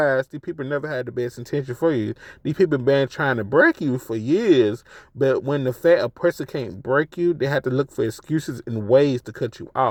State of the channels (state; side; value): identical; both; correlation 1.00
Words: these people never had the best intention for you. These people been trying to break you for years, but when the fact a person can't break you, they have to look for excuses and ways to cut you